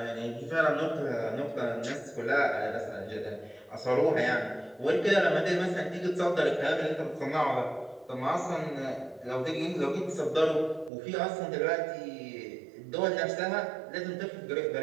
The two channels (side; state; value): left; drops out; at 10.9 s